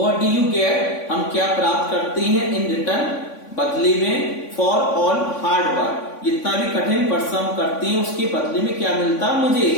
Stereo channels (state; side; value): late; right; 3.5 ms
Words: do you get, हम क्या प्राप्त करते हैं, इन रिटर्न, बदले में, फॉर ऑल हार्ड वर्क, जितना भी कठिन परिश्रम करते हैं उसके बदले में क्या मिलता मुझे,